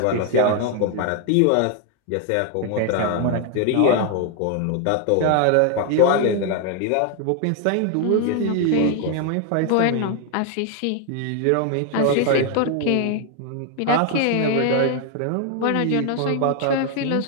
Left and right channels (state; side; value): different; both; correlation 0.00